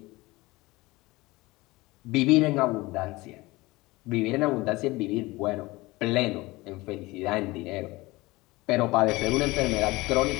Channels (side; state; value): right; quieter; 21.2 dB